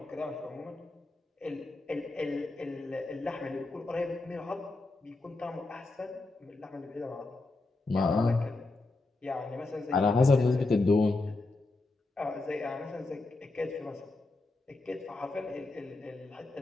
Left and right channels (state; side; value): quieter; right; 3.2 dB